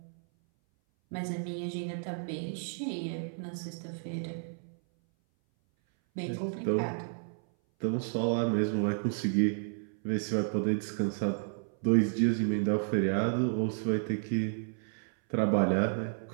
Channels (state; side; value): silent; left; 57 dB below the other